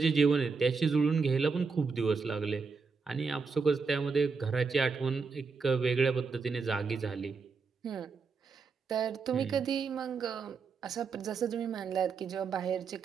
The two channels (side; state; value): left; quieter; 5.0 dB